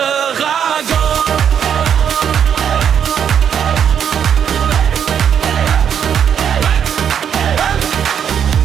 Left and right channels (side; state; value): left; quieter; 8.4 dB